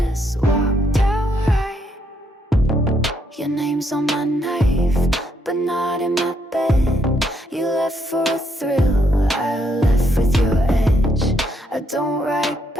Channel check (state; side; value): normal; both; correlation 0.74